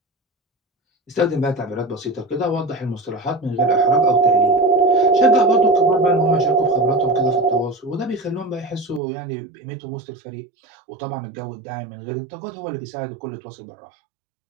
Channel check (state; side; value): drops out; left; at 9.0 s